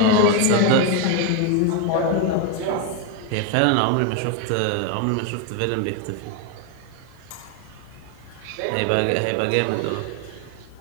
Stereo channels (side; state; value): both; different; correlation 0.01